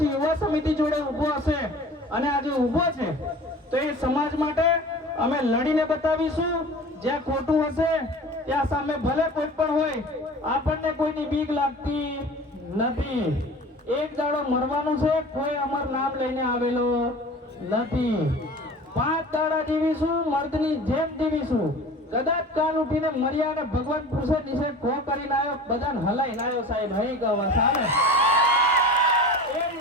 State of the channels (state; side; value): normal; both; correlation 0.39